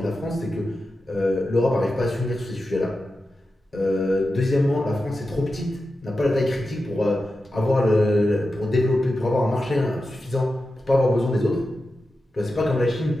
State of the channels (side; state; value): both; normal; correlation 0.91